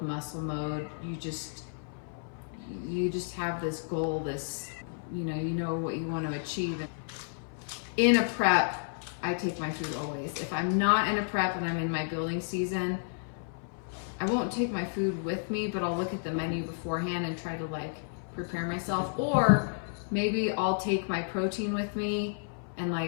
muscle mode, you just have this goal, this, you know what you want to achieve. In a prep, I take my food always. If I'm not in a prep and I'm in my building season, I won't take my food with me, but I'll look at the menu beforehand and try to like prepare myself. Or maybe I'll take my protein with me and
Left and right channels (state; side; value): silent; right; 57 dB below the other